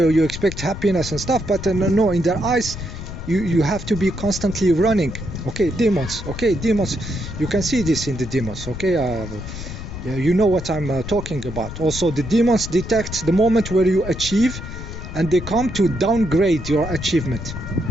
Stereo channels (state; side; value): noise; left; rumble, 9 dB below the sound